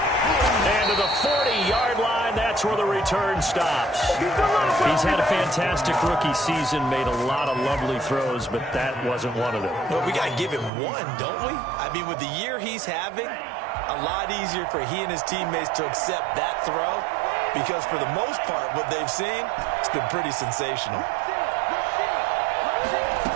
And to the 40-yard line, that's where the return stops. He's had a fantastic rookie season, made a lot of lovely throws, but that wasn't one of them. Well, we got to give him one, don't we? I mean, with the year he's having, a lot easier for he and his teammates to accept that throw because for the most part, what they've seen, it's been pretty sensational.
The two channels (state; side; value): drops out; left; at 10.7 s